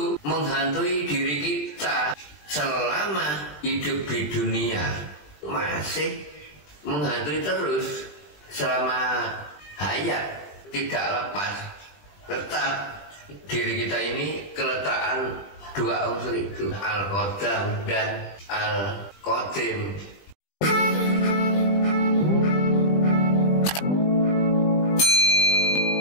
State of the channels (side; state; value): right; late; 20 ms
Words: menghantui diri kita selama hidup di dunia, masih menghantui terus selama hayat, tidak lepas. Tetap diri kita ini keletakan dua unsur itu, Al-Qadam dan Al-Qadim.